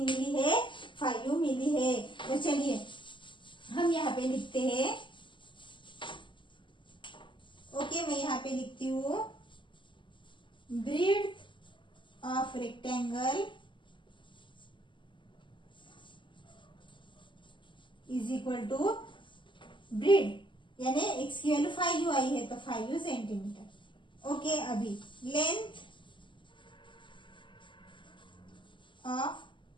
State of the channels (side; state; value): right; late; 0.24 ms